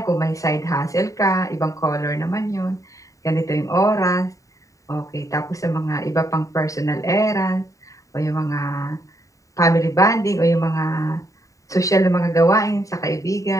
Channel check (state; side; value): late; right; 0.16 ms